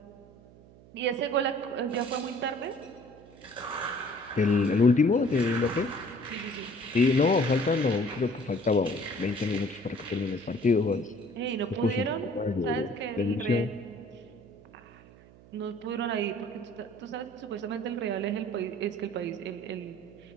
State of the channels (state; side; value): noise; right; hum, 23 dB below the sound